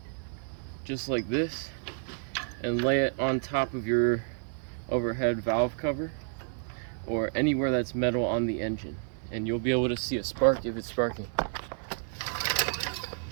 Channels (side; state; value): left; silent; 58 dB below the other